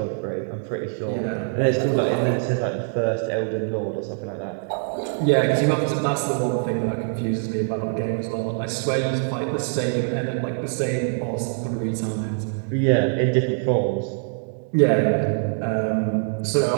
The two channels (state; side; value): silent; left; digital silence